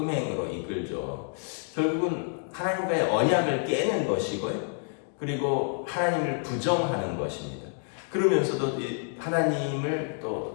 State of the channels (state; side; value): silent; right; 57 dB below the other